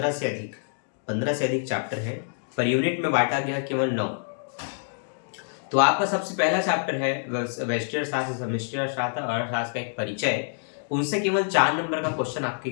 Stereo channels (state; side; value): silent; right; digital silence